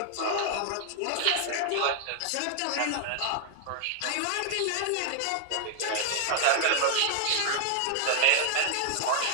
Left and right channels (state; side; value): different; both; correlation 0.00